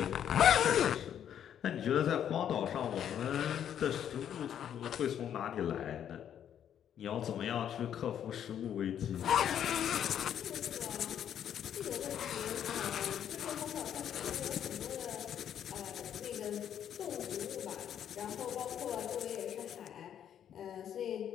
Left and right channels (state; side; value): quieter; right; 9.6 dB